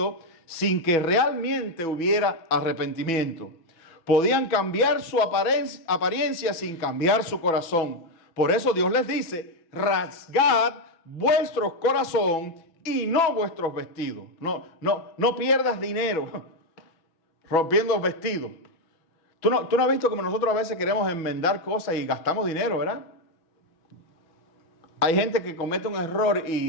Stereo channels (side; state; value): right; late; 6.1 ms